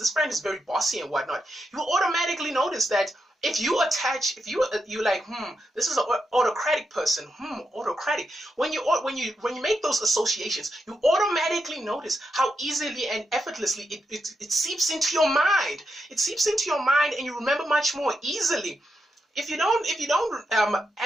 friend is very bossy and whatnot. You automatically notice that if you like, this is an autocratic person, autocratic. When you make those associations, you automatically notice how easily and effortlessly it seeps into your mind. It seeps into your mind, and you remember much more easily. If you don't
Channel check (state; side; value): normal; both; correlation 0.84